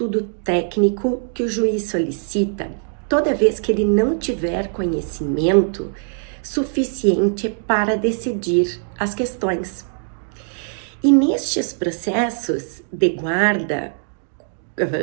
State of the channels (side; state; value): left; silent; 65 dB below the other